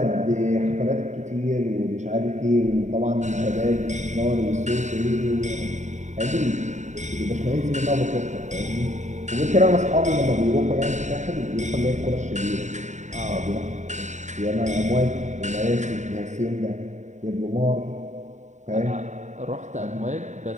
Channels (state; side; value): late; left; 0.34 ms